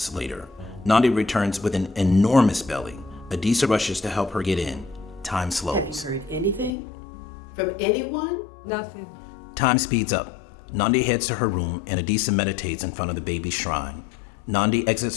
later. Nandi returns with an enormous belly. Adisa rushes to help her get in. Time slows. Have you heard anything? From anyone? Nothing. Time speeds up. Nandi heads to her room and Adisa meditates in front of the baby's shrine. Nandi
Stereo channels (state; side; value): drops out; right; at 6.7 s